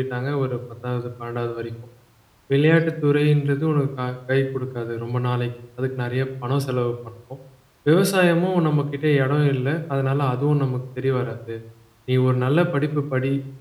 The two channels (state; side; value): identical; both; correlation 1.00